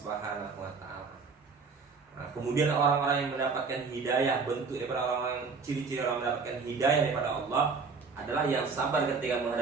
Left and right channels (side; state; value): left; quieter; 4.8 dB